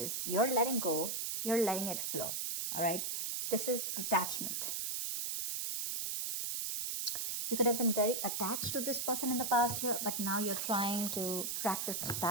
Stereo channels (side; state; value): right; noise; hiss, 2 dB below the sound